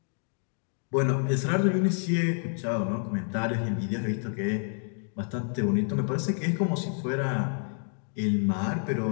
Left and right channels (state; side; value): silent; right; 56 dB below the other